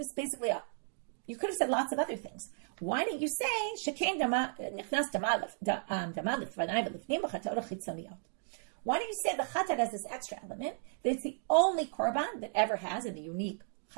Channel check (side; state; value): left; silent; digital silence